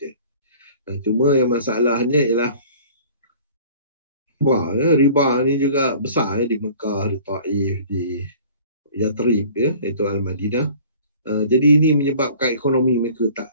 Cuma yang masalahnya ialah riba ni juga besar di Mekah, di Taif, di Yathrib, iaitu Al-Madinah. Jadi ini menyebabkan ekonomi mereka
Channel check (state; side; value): inverted; both; correlation -0.48